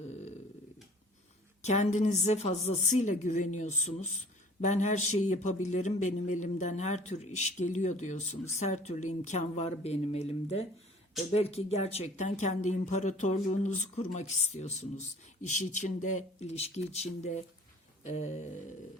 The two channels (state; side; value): normal; both; correlation 0.50